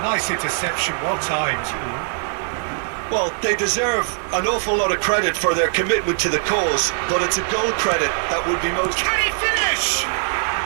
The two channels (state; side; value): silent; left; digital silence